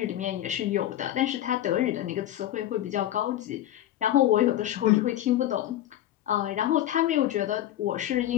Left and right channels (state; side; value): quieter; right; 12.8 dB